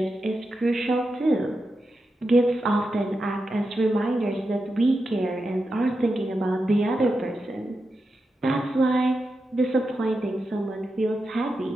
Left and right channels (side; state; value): both; normal; correlation 0.89